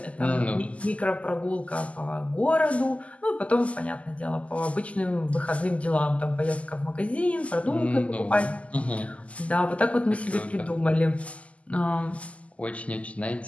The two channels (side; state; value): right; late; 0.066 ms